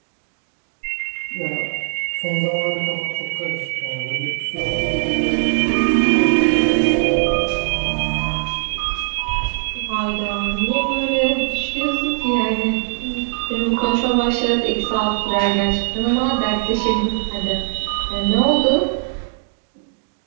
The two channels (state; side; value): silent; left; digital silence